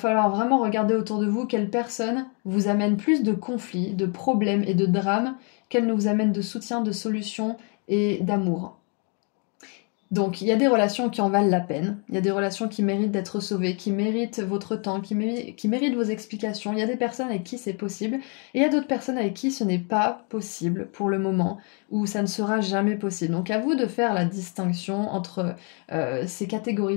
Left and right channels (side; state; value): right; quieter; 37.5 dB